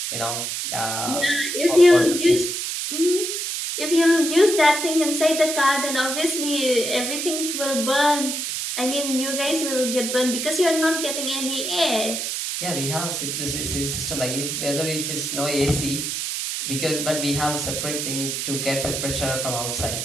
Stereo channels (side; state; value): right; noise; hiss, 3 dB below the sound